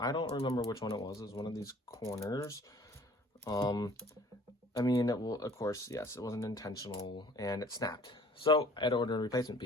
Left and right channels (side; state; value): both; normal; correlation 0.52